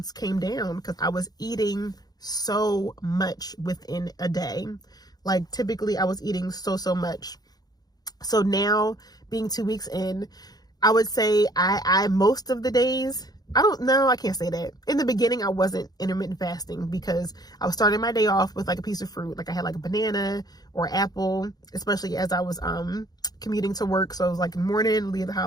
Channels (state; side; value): late; right; 0.19 ms